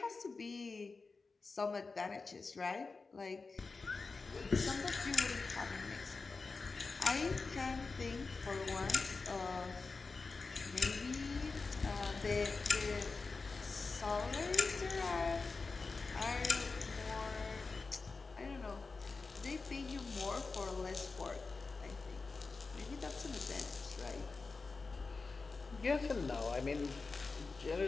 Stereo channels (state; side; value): quieter; right; 4.2 dB